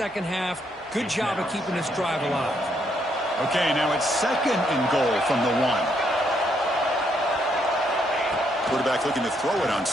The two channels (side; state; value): both; normal; correlation 0.74